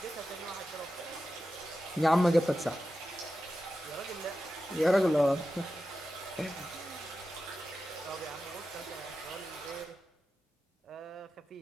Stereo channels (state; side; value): normal; both; correlation 0.92